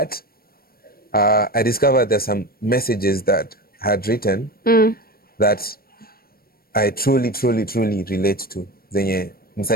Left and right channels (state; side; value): late; right; 0.44 ms